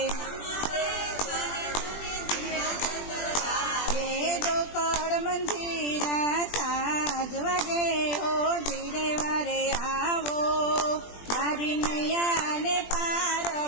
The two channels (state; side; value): late; right; 20 ms